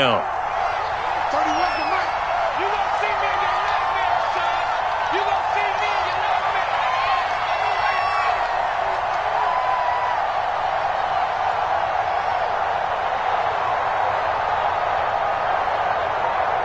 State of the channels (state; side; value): identical; both; correlation 1.00